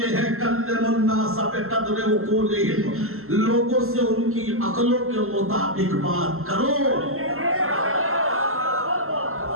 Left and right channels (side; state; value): left; late; 0.62 ms